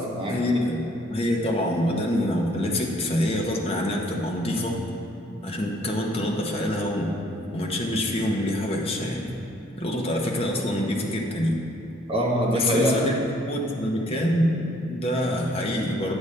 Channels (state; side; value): normal; both; correlation 0.62